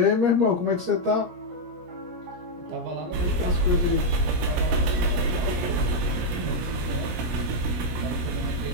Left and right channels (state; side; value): late; left; 17 ms